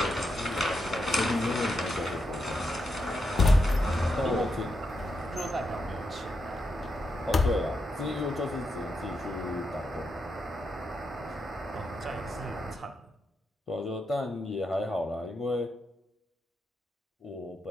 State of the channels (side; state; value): both; normal; correlation 0.84